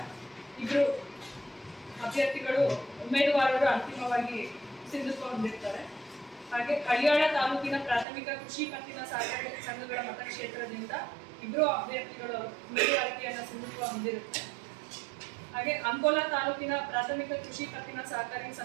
2 ಅಭ್ಯರ್ಥಿಗಳು ಉಮೇದುವಾರರು ಅಂತಿಮವಾಗಿ ಸಿಂಧುತ್ವ ಹೊಂದಿರ್ತಾರೆ. ಹಾಗೆ ಹಳಿಯಾಳ ತಾಲೂಕಿನ ಪ್ರಾಥಮಿಕ ಕೃಷಿ ಪತ್ತಿನ ಸಹಕಾರಿ ಸಂಘಗಳ ಮತಕ್ಷೇತ್ರದಿಂದ 2 ಅಭ್ಯರ್ಥಿಗಳು ಉಮೇದುವಾರಿಕೆಯನ್ನು ಸಿಂಧುತ್ವ ಹೊಂದಿರುತ್ತೆ. ಹಾಗೆ ಅಂಕೋಲಾ ತಾಲೂಕಿನ ಪ್ರಾಥಮಿಕ ಕೃಷಿ ಪತ್ತಿನ ಸಹಕಾರಿ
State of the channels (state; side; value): drops out; left; at 8.1 s